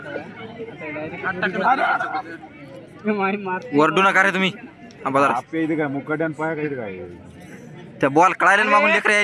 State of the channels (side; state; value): both; identical; correlation 1.00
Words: वरडू नका रे तुम्ही. आपल्या इथे काय मुकाट्यान पाया काय काय त्या बॉल कळायला मागून लेकर